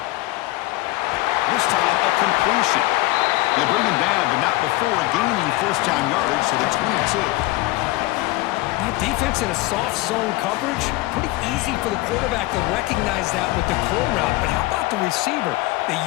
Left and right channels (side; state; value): right; quieter; 19.5 dB